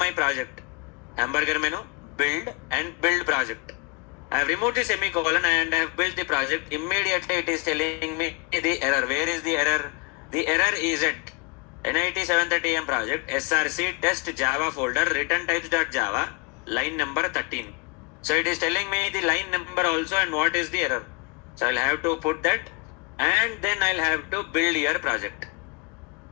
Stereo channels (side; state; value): right; quieter; 28.9 dB